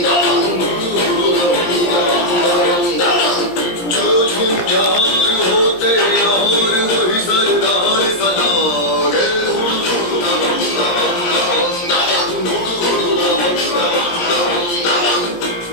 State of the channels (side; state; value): right; late; 17 ms